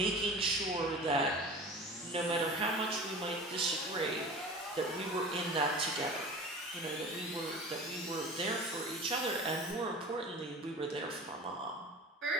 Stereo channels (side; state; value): both; normal; correlation 0.37